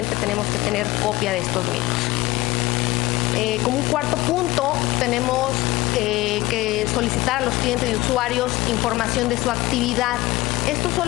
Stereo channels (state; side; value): quieter; right; 19.1 dB